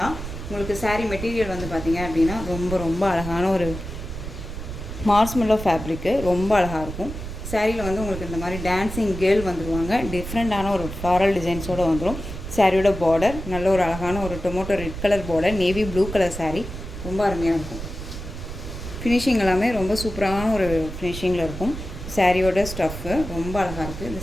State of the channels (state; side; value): noise; right; rumble, 8 dB below the sound